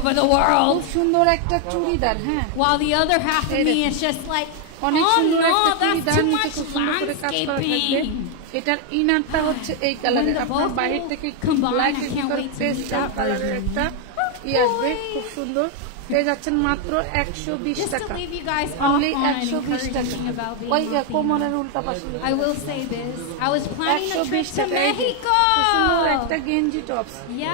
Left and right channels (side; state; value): both; different; correlation 0.01